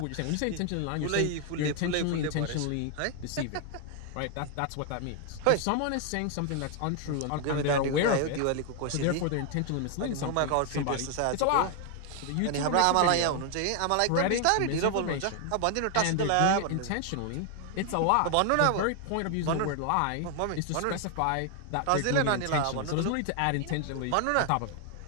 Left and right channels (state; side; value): different; both; correlation 0.00